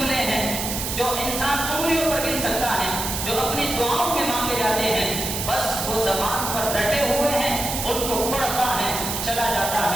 ہیں جو انسان انگلیوں پر گن سکتا ہے، جو اپنی دعاؤں میں مانگے جاتے ہیں، بس وہ زبان پر رٹے ہوئے ہیں، ان کو پڑھتا ہے چلا جاتا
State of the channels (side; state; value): right; noise; hiss, 3 dB below the sound